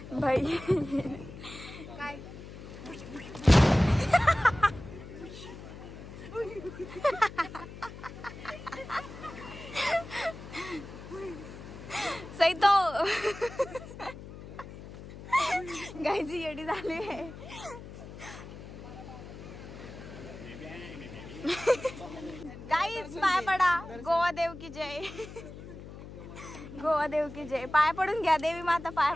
भाई काय सही तो गायची येडी झाली आहे. गाईज पाय पडा. गोवा देव की जय. गोवा देव की जय. पाय पडून घ्या, देवी माता पाय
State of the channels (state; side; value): noise; left; hum, 13 dB below the sound